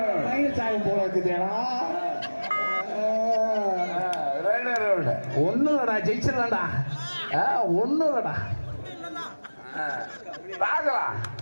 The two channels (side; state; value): both; inverted; correlation -1.00